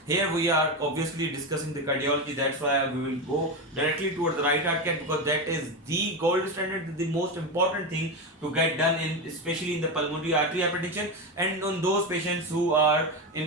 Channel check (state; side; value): normal; both; correlation 0.15